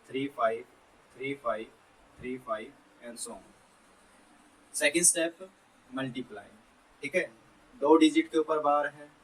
and so on. Second step multiply. ठीक है, 2 डिजिट के ऊपर बार है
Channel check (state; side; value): identical; both; correlation 1.00